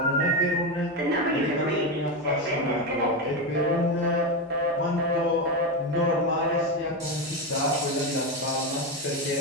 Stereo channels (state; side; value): normal; both; correlation 0.13